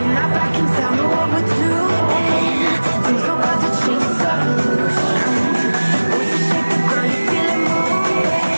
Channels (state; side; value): inverted; both; correlation -1.00